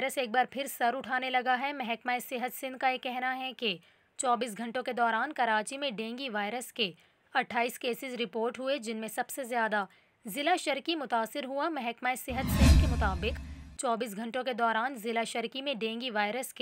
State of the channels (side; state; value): both; identical; correlation 1.00